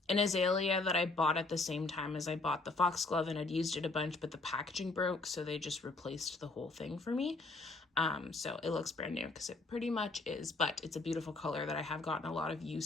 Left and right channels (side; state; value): right; quieter; 3.5 dB